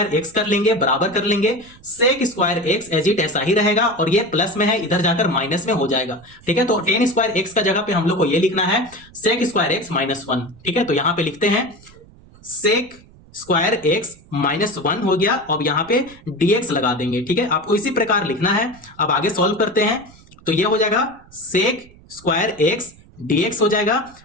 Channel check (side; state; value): right; noise; rumble, 24 dB below the sound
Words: एक्स कर लेंगे, बराबर कर लेंगे sec square x, as it ऐसा ही रहेगा, और ये प्लस में है, इधर जाकर माइनस में हो जाएगा, ठीक है। तो 10 स्क्वायर एक्स का जगह पे हम लोग को ये लिखना है सेक स्क्वायर एक्स -1, ठीक है। तो यहाँ पे लिखते हैं सेक स्क्वायर एक्स -1 हो गया, अब यहाँ पे dx लगा देंगे, ठीक है। आपको इसी प्रकार लिखना है। अब आगे सॉल्व करते हैं, तो ये हो जाएगा सेक स्क्वायर एक्स dx हो जाएगा